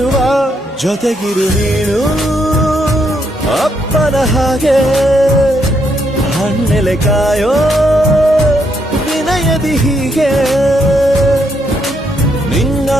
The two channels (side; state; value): both; normal; correlation 0.76